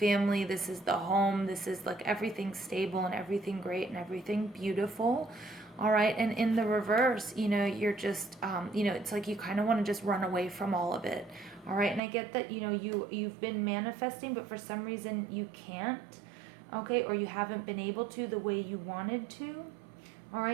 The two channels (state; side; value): drops out; left; at 12.0 s